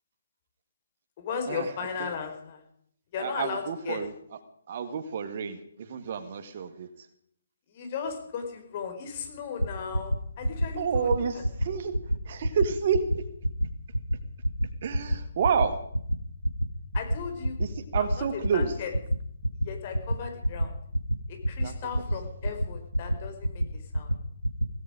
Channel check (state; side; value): inverted; both; correlation -0.79